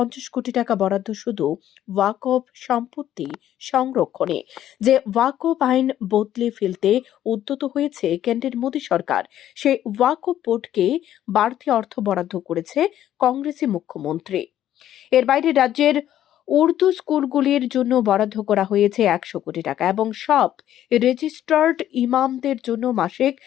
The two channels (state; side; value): quieter; right; 11.8 dB